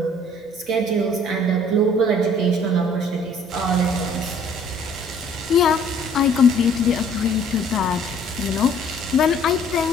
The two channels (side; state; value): both; normal; correlation 0.57